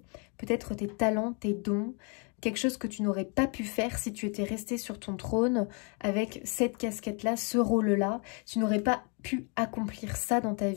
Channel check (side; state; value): right; quieter; 36.0 dB